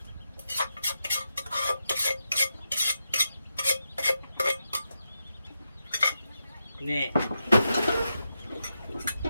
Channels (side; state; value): both; inverted; correlation -0.87